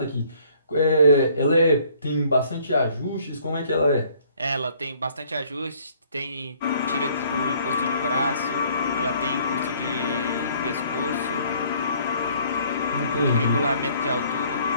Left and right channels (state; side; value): inverted; both; correlation -0.59